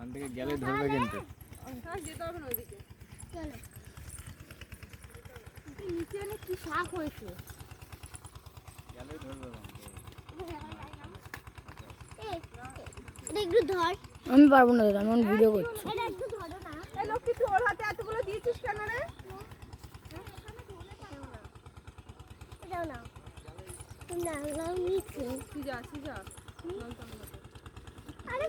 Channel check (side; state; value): both; identical; correlation 1.00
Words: থেকে গেলে ধরবে কিন্তু যেতে হবে না ওইদিকে চলো নিচে অনেক কি শাক হয়েছে গেলে ধরবে একটু ধর আমি পারবো না দাদা, আমি ভিডিও করছি। এটা একটু ধরো না এই লক্ষ্মী তুই ওর হাতে এতগুলো দিয়েছিস কেন রে এটাও না না নিচে সিজা সিজা আরে